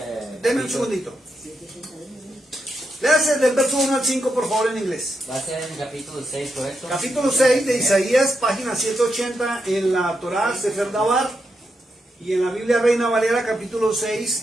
Deme un segundito. Léase del verso 1 al 5, por favor, en inglés. Va a ser en el capítulo 6, ¿correcto? Capítulo 6 de Isaías, página 180 en la Torá, Sefer Dabar, y en la Biblia Reina Valera, capítulo 6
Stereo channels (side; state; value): both; normal; correlation 0.84